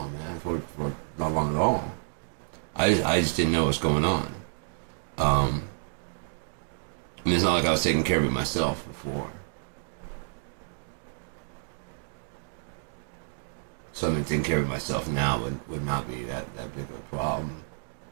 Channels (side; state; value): left; silent; digital silence